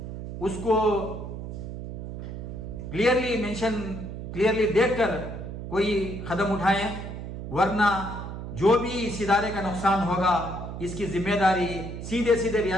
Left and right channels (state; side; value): noise; right; hum, 8 dB below the sound